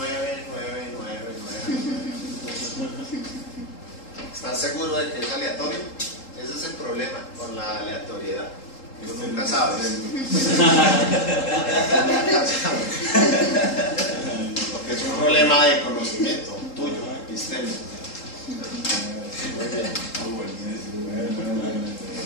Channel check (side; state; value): right; late; 3.8 ms